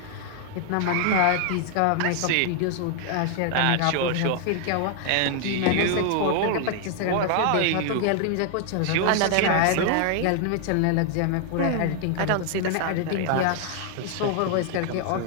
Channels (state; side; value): different; both; correlation 0.00